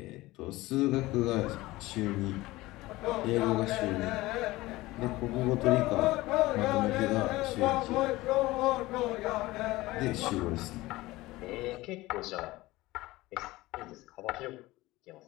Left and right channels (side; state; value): right; quieter; 19.0 dB